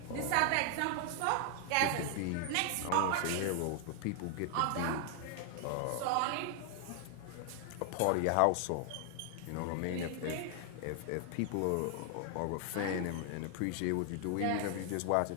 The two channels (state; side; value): different; both; correlation 0.00